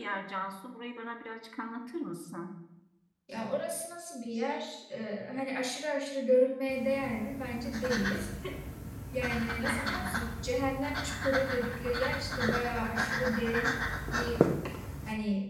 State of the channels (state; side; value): identical; both; correlation 1.00